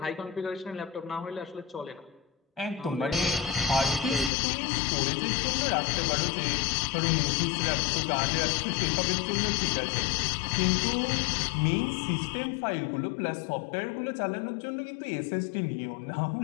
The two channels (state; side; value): drops out; right; at 4.3 s